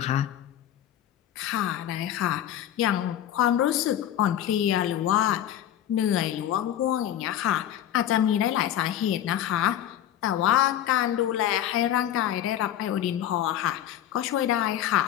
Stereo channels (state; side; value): quieter; right; 11.3 dB